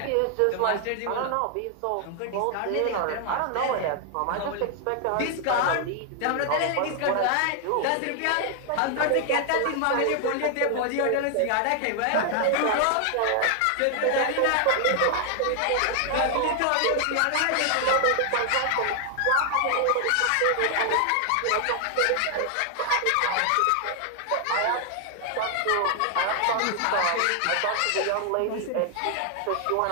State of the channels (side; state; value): both; different; correlation 0.00